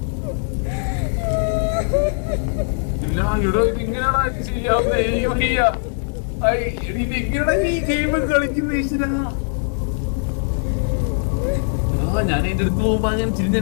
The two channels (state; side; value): silent; right; digital silence